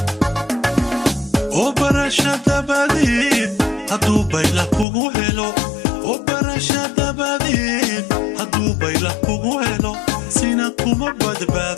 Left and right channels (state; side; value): drops out; right; at 4.9 s